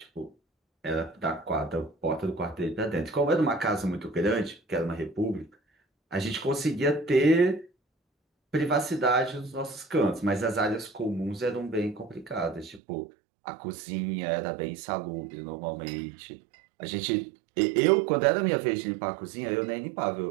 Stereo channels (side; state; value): left; drops out; at 12.8 s